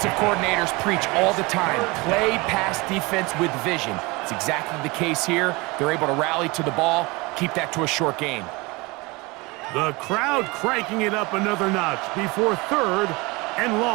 coordinators preach all the time, play pass defense with vision. It's exactly the case here. They're able to rally to the ball, keep that to a short gain. The crowd cranking it up another notch before 3rd and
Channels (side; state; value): left; quieter; 24.7 dB